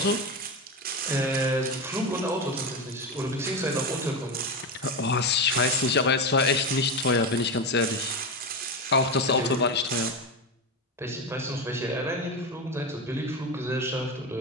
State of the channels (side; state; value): both; normal; correlation 0.16